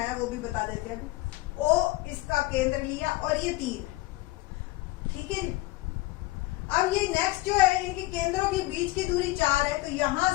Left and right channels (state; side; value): quieter; right; 19.4 dB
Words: वो भी बता देते हैं। ओ इसका केंद्र लिया और ये 3। ठीक है जी। अब ये नेक्स्ट जो है, इनके केंद्रों के बीच की दूरी 4 है, तो यहां